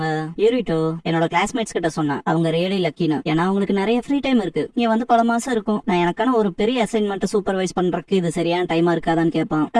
யூரிட்டோ என்னோட கிளாஸ்மேட்ஸ் கிட்ட சொன்னேன், அவங்க ரியலி லக்கின்னு. ஏன்னா அவங்களுக்கு நிறைய ஃப்ரீ டைம் இருக்கு. நீ வந்து பல மாசம் இருக்கும். நான் எனக்கான ஒரு பெரிய அசைன்மெண்ட் சூப்பர்வைஸ் பண்றதுக்கு இது சரியான டைமா இருக்காதான்னு கேட்பான்.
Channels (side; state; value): both; identical; correlation 1.00